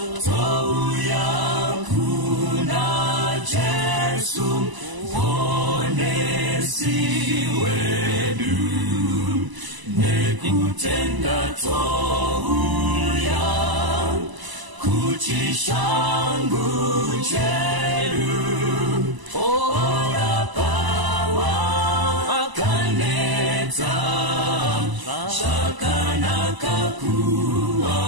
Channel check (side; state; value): left; late; 1.0 ms